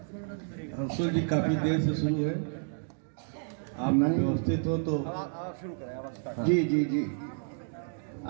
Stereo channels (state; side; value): silent; left; 57 dB below the other